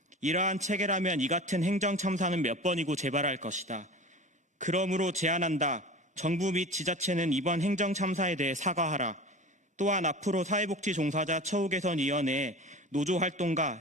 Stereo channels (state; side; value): normal; both; correlation 0.35